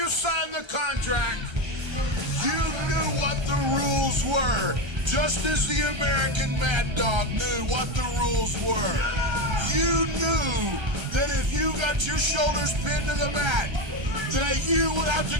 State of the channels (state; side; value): late; left; 1.3 ms